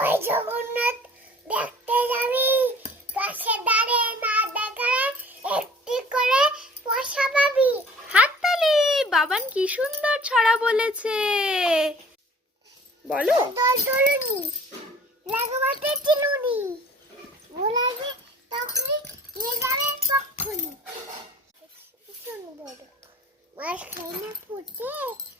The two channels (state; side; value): normal; both; correlation 0.49